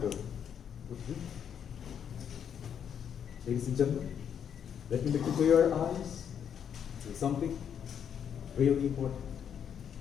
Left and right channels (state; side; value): quieter; right; 8.3 dB